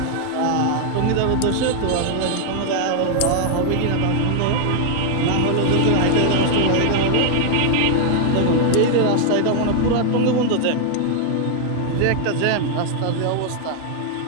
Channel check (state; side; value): different; both; correlation 0.00